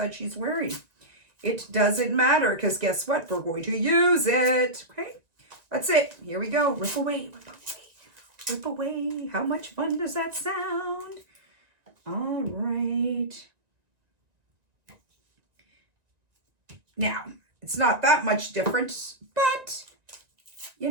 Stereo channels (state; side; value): late; left; 1.9 ms